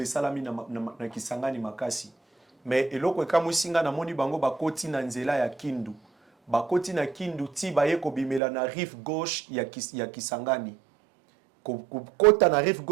salami na Kisangani makasi. Mais eloko ekamusinga namoni bango bakoti na nzela ya Kindu. Bakoti na Kindu ti baye ko bimela na rive gauche ya Kisangani. Kota na rive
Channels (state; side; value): drops out; left; at 8.4 s